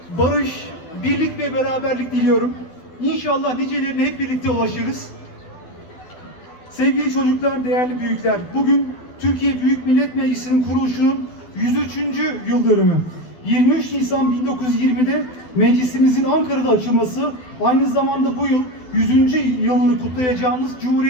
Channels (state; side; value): late; right; 12 ms